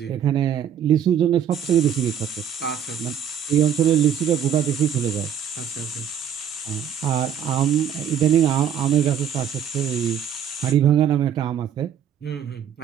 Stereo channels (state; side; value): quieter; left; 8.8 dB